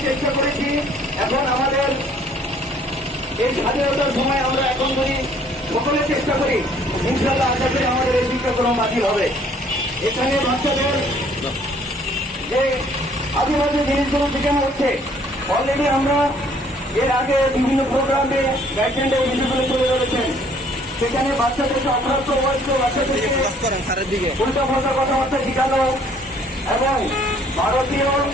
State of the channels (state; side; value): normal; both; correlation 0.60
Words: চেষ্টা করেছি, এখন আমাদের এই স্বাধীনতার সময় আমরা এখন যদি সকলে চেষ্টা করি, ইনশাআল্লাহ আশা করি আমাদের এই শিক্ষাক্রম বাতিল হবে। এখানে বাচ্চাদের যে আদিবাসী জিনিসগুলো শেখানো হচ্ছে, অলরেডি আমরা এর আগে বিভিন্ন প্রোগ্রামে গাইডলাইনে এই বিষয়গুলো তুলে ধরেছেন। সেখানে বাচ্চাদেরকে অপ্রাপ্ত বয়স্ক বাচ্চাদেরকে উল্টা পাল্টা কথাবার্তা শেখানো এবং ভারতীয়